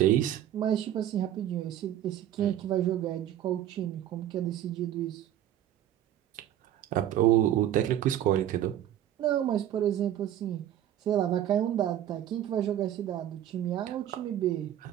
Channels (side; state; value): left; quieter; 11.6 dB